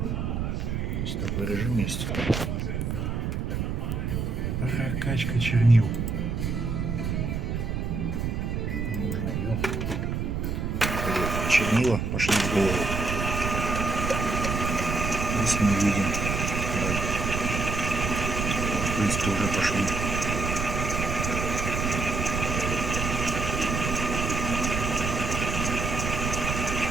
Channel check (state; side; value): noise; right; rumble, 1 dB below the sound